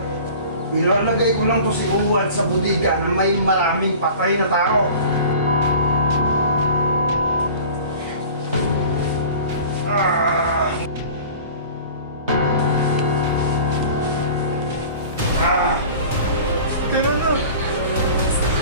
Ilalagay ko lang to si Uwan sa budiga na may maraming patay na tao. Ah! Ah! Tira na!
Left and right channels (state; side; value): inverted; both; correlation -0.41